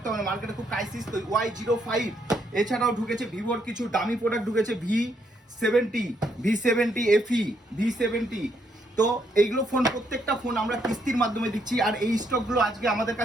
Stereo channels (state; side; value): normal; both; correlation 0.74